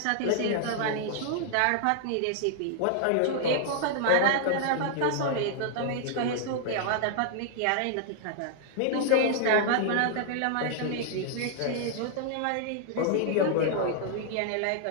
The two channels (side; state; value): both; different; correlation -0.01